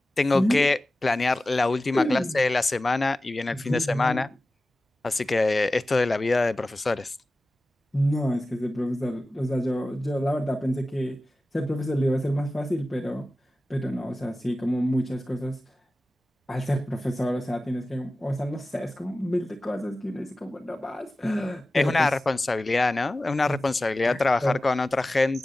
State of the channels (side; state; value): both; normal; correlation 0.95